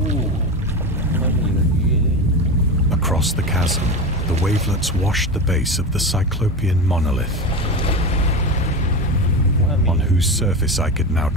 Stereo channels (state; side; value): normal; both; correlation 0.23